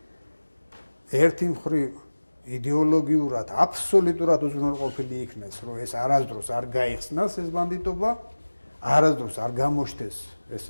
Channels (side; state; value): both; inverted; correlation -1.00